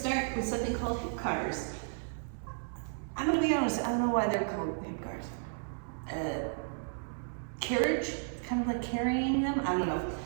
with something called hip cars. I'm going to be honest, I don't know why they're called hip cars. Carriage, kind of like carrying them, I don't know.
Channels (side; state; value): left; silent; 56 dB below the other